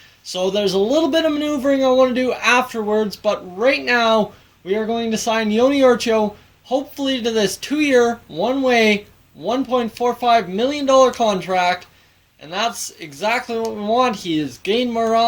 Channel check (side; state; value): both; identical; correlation 1.00